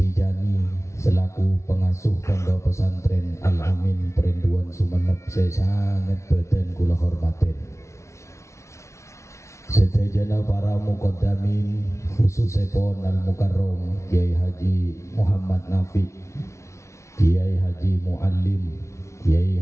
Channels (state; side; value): late; right; 0.14 ms